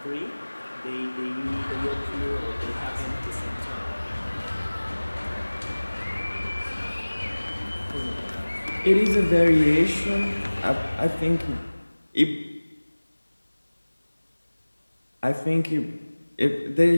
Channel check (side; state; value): both; inverted; correlation -1.00